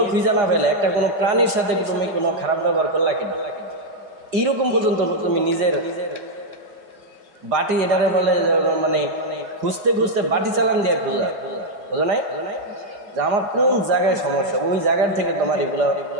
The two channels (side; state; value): left; late; 5.0 ms